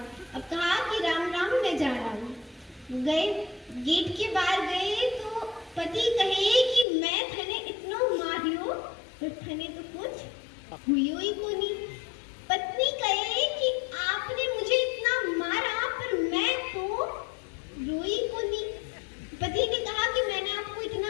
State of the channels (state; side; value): drops out; right; at 6.9 s